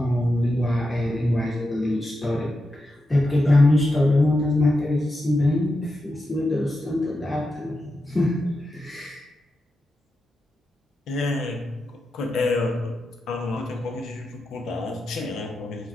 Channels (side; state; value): both; normal; correlation 0.88